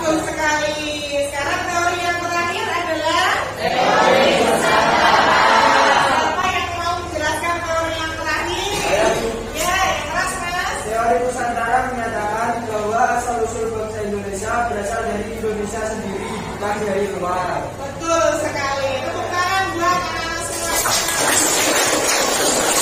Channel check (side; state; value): both; identical; correlation 1.00